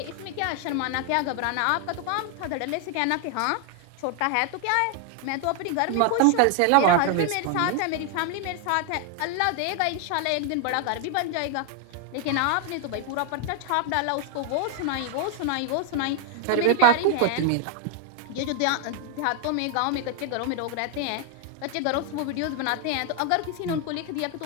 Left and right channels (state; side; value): different; both; correlation 0.00